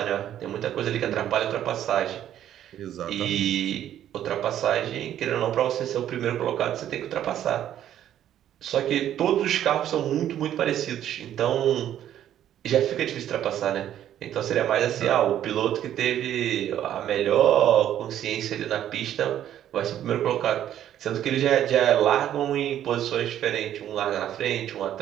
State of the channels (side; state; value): left; quieter; 11.1 dB